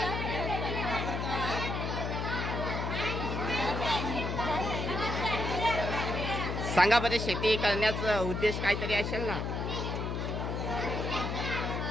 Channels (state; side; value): noise; left; hum, 2 dB below the sound